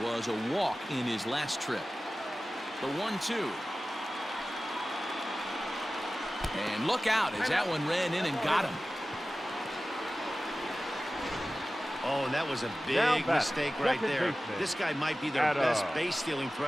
was a walk in his last trip. The 1-2. And look out as that one ran in and got him. Oh, and that was a big mistake right there. This guy might be their best base-stealing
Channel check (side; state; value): both; normal; correlation 0.96